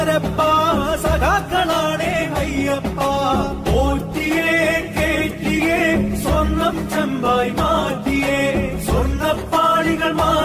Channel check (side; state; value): both; identical; correlation 1.00